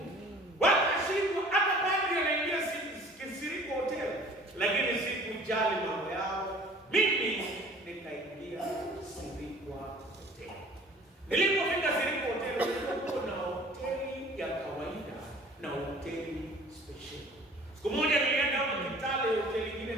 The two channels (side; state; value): both; normal; correlation 0.49